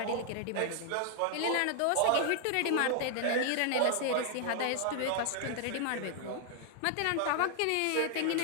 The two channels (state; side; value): different; both; correlation 0.00